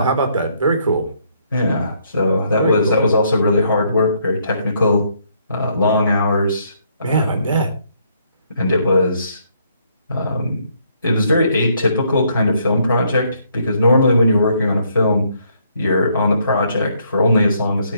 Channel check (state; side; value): inverted; both; correlation -0.70